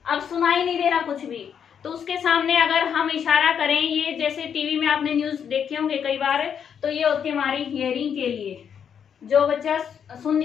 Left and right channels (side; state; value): right; quieter; 7.8 dB